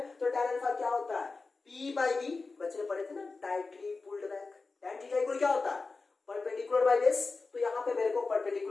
तो tan अल्फा क्या होता है, p बाई बी, बच्चे ने पढ़े थे ना tightly pulled back. tan theta equal क्या होता है, परपेंडिकुलर बाई बेस, तो यहां पे मेरे को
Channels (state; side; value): quieter; right; 4.0 dB